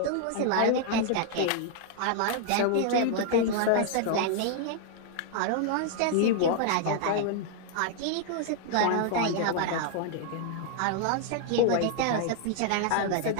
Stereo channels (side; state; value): both; different; correlation 0.00